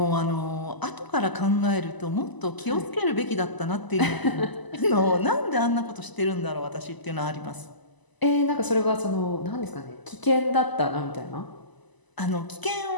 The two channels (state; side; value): late; right; 1.0 ms